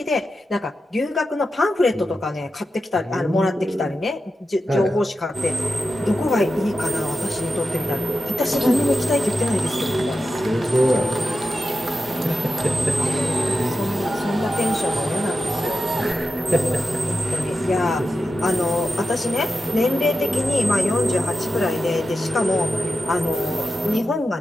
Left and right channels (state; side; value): normal; both; correlation 0.90